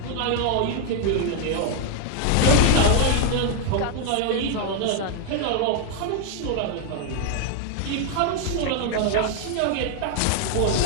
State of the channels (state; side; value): different; both; correlation 0.00